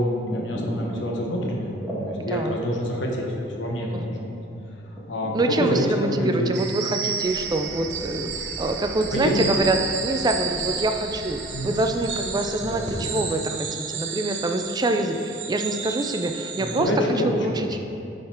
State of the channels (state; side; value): normal; both; correlation 0.45